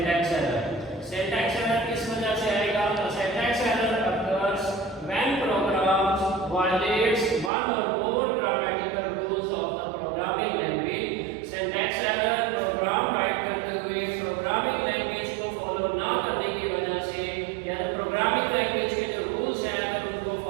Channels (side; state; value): left; drops out; at 7.5 s